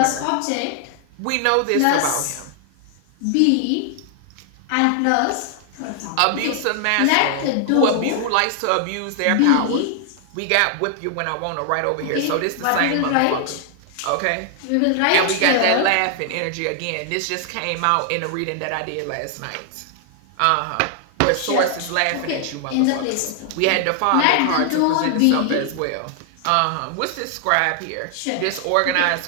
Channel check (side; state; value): both; different; correlation 0.00